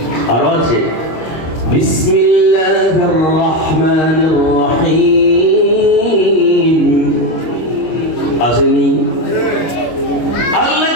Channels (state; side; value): late; right; 25 ms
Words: আরো আছে, বিসমিল্লাহির রহমানির রহিম। আসেনি? আল্লাহ